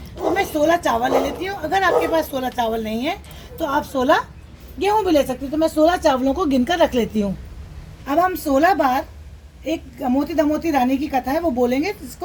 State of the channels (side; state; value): both; identical; correlation 1.00